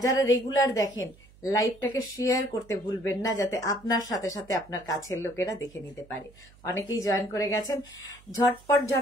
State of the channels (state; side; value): noise; right; hum, 25 dB below the sound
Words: যারা রেগুলার দেখেন, লাইভটাকে শেয়ার করতে ভুলবেন না, যাতে আপনার সাথে সাথে আপনার কাছের লোকেরা দেখে নিতে পারে। অনেকেই জয়েন করে গেছেন, ঝটপট